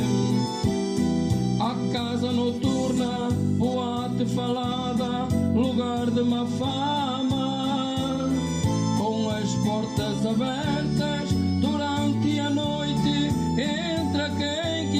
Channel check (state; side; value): identical; both; correlation 1.00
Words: A casa noturna, boate falada, lugar de má fama, com as portas abertas durante a noite, entra quem